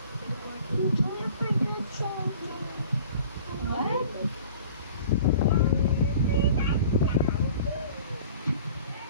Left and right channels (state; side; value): inverted; both; correlation -0.46